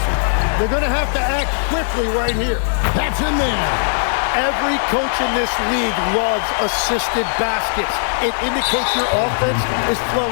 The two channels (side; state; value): right; silent; 67 dB below the other